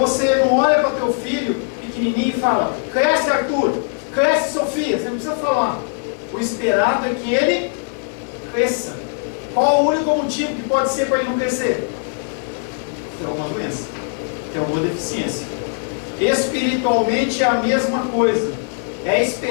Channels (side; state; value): right; silent; 56 dB below the other